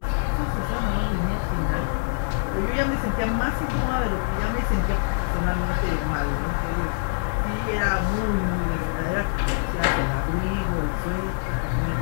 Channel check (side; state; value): right; silent; digital silence